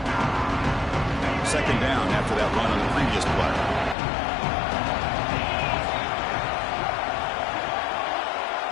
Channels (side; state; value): right; drops out; at 4.0 s